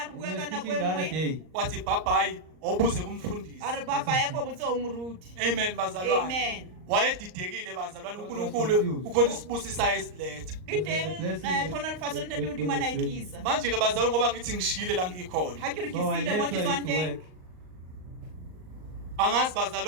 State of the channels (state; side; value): late; left; 38 ms